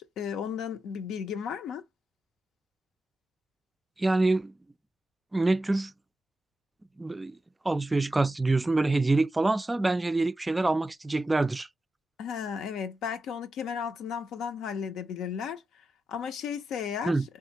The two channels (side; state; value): both; normal; correlation 0.90